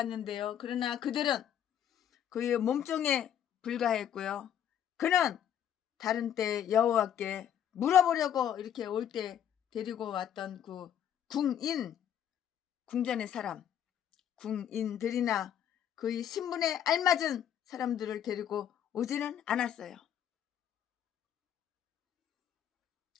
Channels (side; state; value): right; quieter; 9.8 dB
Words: 그러나 그들은 그의 몸종에 불과했고요. 그는 다른 때 여호와께 물어보려고 이렇게 올 때 데리고 왔던 그 궁전의 사람, 궁인들이나 그의 신분에 알맞은 사람들을 데리고 오지는 않았어요.